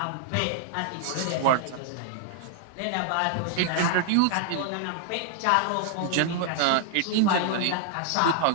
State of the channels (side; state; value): both; different; correlation 0.00